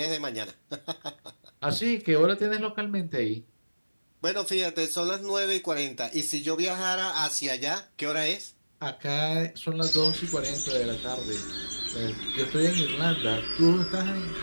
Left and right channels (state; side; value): inverted; both; correlation -1.00